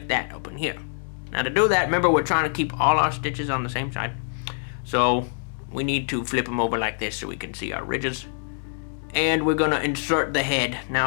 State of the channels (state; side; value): silent; right; digital silence